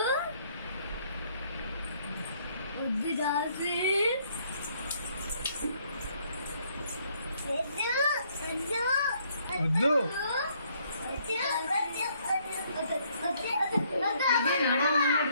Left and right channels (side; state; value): both; inverted; correlation -0.67